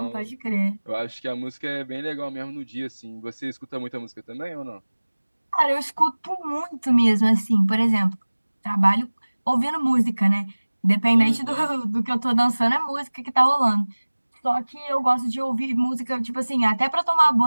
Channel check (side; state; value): both; inverted; correlation -1.00